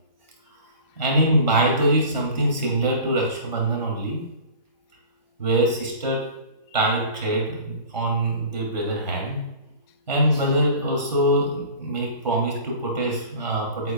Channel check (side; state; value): both; inverted; correlation -0.40